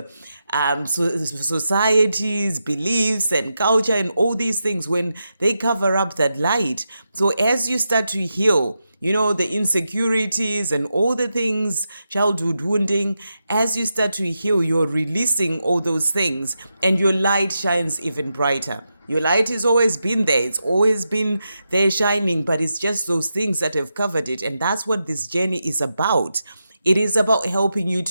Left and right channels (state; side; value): inverted; both; correlation -0.87